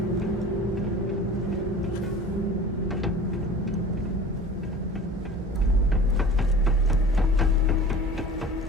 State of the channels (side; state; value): both; normal; correlation 0.40